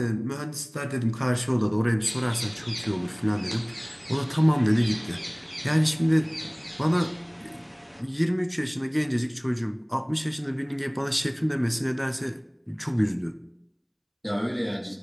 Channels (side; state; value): both; identical; correlation 1.00